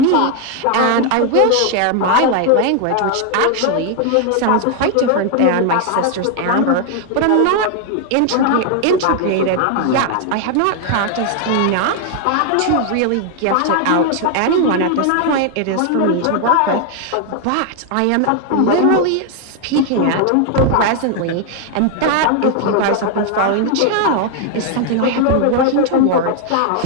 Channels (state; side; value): different; both; correlation 0.00